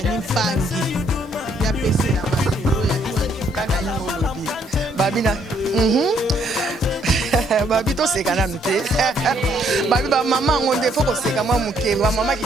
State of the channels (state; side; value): normal; both; correlation 0.68